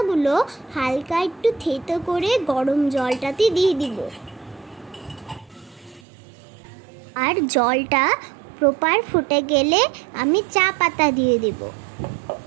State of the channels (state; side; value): drops out; left; at 6.0 s